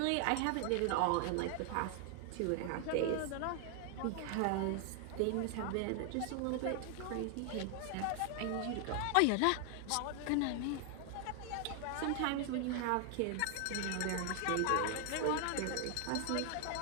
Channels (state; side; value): different; both; correlation 0.00